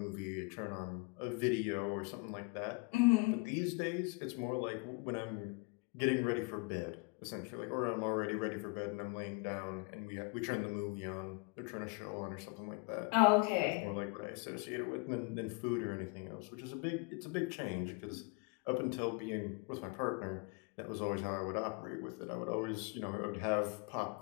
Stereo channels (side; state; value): right; quieter; 30.7 dB